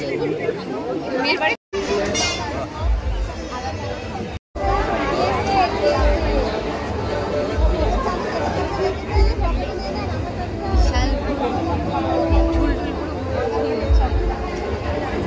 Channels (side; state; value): both; identical; correlation 1.00